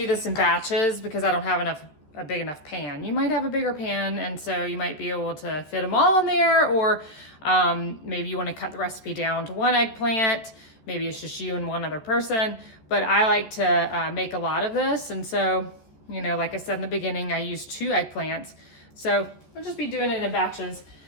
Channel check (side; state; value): right; late; 13 ms